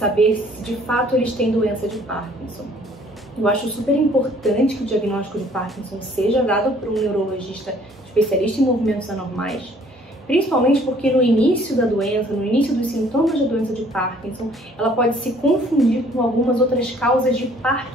se de fato eles têm doença de Parkinson. Eu acho super importante que o diagnóstico de Parkinson seja dado por um neurologista especialista em movimentos anormais, principalmente porque no início da doença, no início dos sintomas da doença de Parkinson, ela pode se confundir com algumas outras causas de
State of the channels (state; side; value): normal; both; correlation 0.58